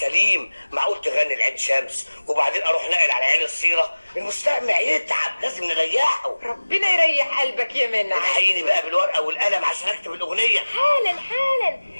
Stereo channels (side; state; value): both; inverted; correlation -1.00